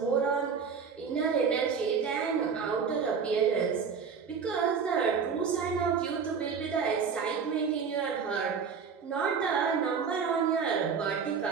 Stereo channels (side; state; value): left; quieter; 6.1 dB